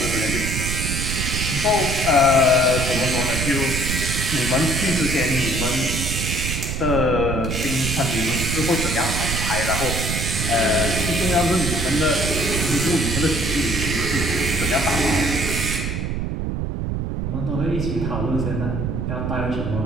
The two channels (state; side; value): noise; right; rumble, 2 dB below the sound